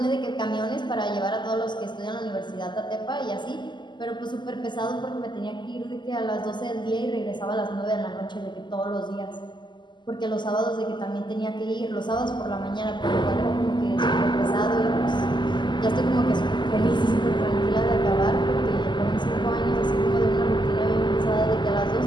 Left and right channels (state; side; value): late; right; 0.22 ms